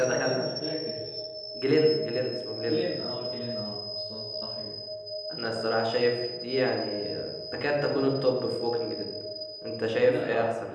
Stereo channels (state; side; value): identical; both; correlation 1.00